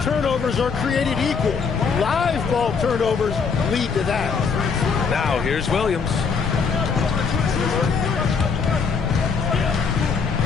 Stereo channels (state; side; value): quieter; right; 5.5 dB